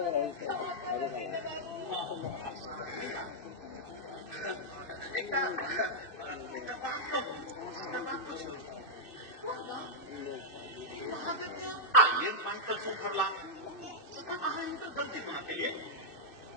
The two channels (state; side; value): late; right; 2.6 ms